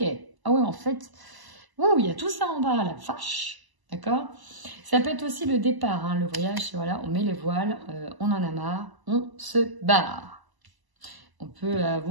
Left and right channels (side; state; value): left; late; 1.0 ms